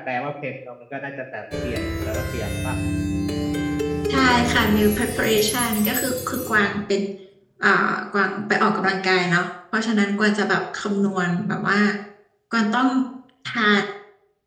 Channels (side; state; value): both; identical; correlation 1.00